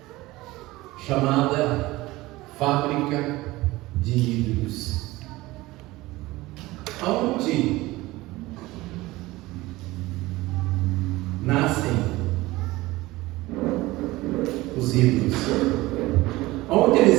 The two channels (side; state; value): left; quieter; 19.3 dB